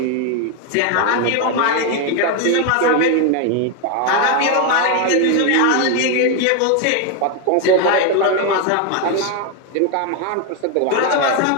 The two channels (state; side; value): different; both; correlation 0.01